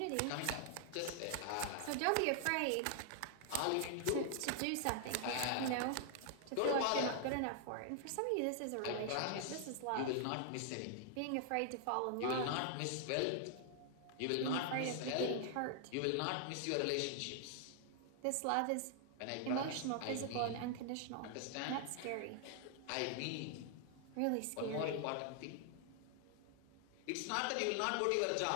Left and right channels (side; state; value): both; different; correlation 0.00